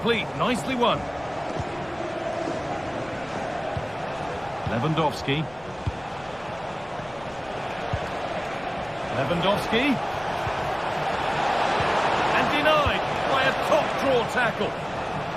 Nicely won. Lewandowski. And denied by a top draw tackle.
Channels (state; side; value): noise; left; rumble, 23 dB below the sound